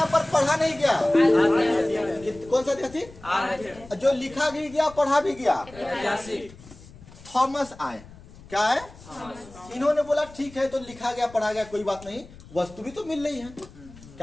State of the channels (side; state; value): left; noise; rumble, 20 dB below the sound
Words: पर पढ़ा नहीं गया, कौन सा थी, जो लिखा भी गया पढ़ा भी गया, थॉमस आए। क्या है, इन्होंने बोला ठीक है, तो लिखा गया पढ़ा गया कोई बात नहीं, वस्तु भी तो मिल रही है।